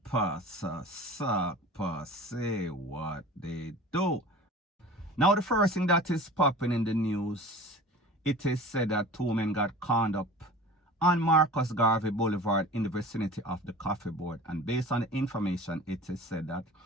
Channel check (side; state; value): both; normal; correlation 0.39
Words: pasa, sapa, say what they do. Now the first thing that is popping in the news, it is said that two men got conned up on Marcus Garvey Boulevard in the vicinity of the coffee board. And based on the information, it is said that